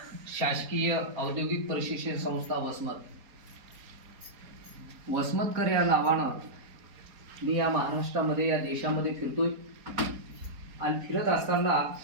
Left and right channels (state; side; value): late; left; 4.6 ms